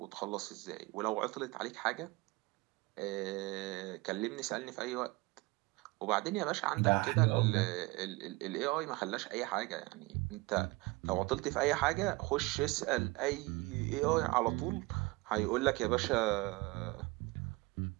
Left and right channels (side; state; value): left; quieter; 23.7 dB